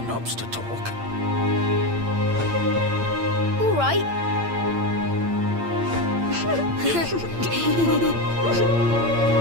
to talk? All right. Well.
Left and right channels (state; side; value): late; left; 8.8 ms